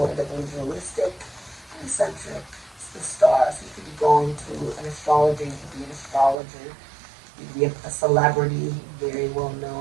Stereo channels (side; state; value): left; drops out; at 6.4 s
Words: individualistic, eccentric. It's the Star. So you could be going to an astrologer, you could be an astrologer, you could be a celebrity, very well